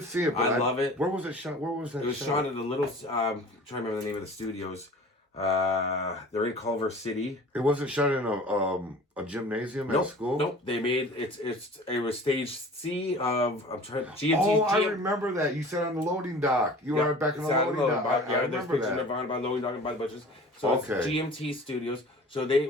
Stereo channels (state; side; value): normal; both; correlation 0.43